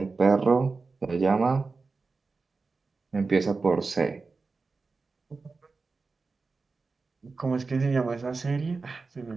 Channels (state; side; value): quieter; left; 4.2 dB